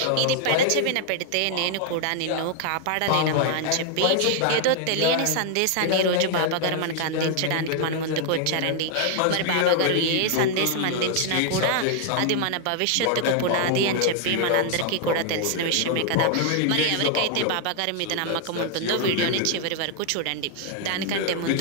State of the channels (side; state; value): both; different; correlation 0.00